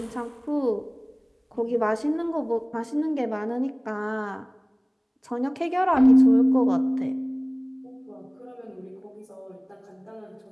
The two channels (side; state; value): both; identical; correlation 1.00